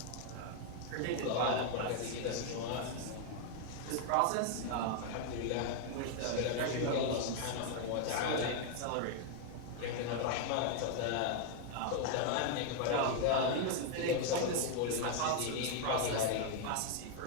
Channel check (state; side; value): different; both; correlation 0.00